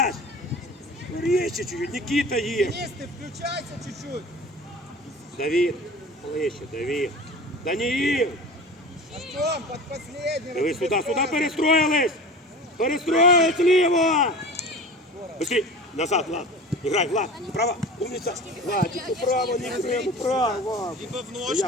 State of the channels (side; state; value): both; normal; correlation 0.36